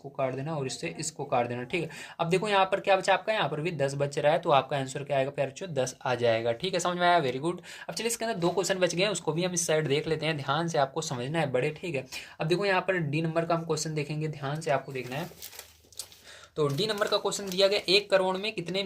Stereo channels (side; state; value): both; identical; correlation 1.00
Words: काट देना और इससे इसको काट देना, ठीक है। अब देखो यहाँ पर क्या बचा आपका, यहाँ पर भी 10 बच रहा है, तो आपका आंसर क्या आएगा प्यारे बच्चों, 10 आ जाएगा, ठीक है। समझ में आया, वेरी गुड। अब चलिए इसके अंदर 2 क्वेश्चन बच गए हैं, उसको भी हम इस साइड देख लेते हैं, ध्यान से आपको समझना है बड़े, ठीक है। अब देखो यहाँ पर डी नंबर का हम क्वेश्चन देखेंगे, ध्यान से आपको देखना है। तो डी नंबर का क्वेश्चन दिया गया 1 करोड़ में कितने